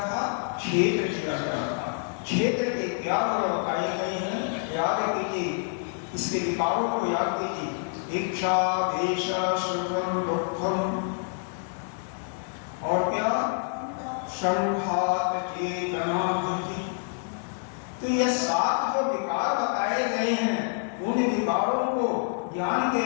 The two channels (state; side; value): silent; right; 60 dB below the other